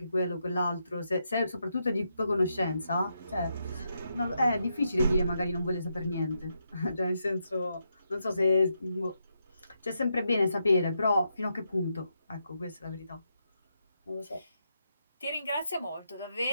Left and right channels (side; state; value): both; inverted; correlation -0.82